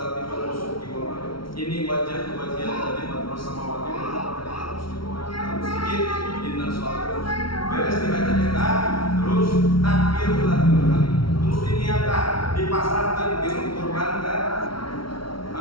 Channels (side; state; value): right; late; 0.74 ms